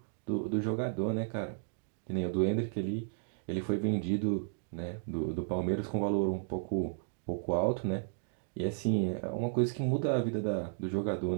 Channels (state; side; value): silent; left; digital silence